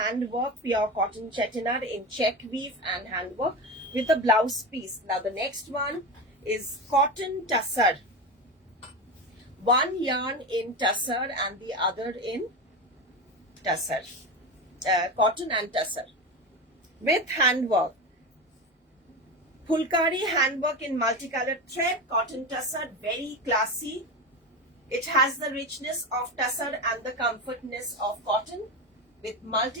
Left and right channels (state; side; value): normal; both; correlation 0.21